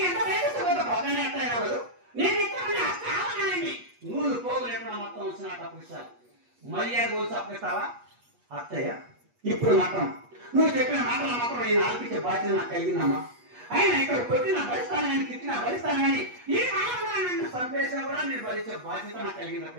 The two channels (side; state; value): left; late; 8.3 ms